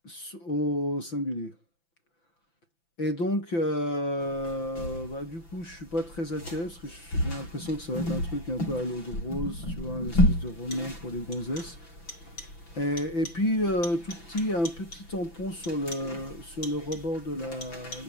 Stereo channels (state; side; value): late; right; 5.9 ms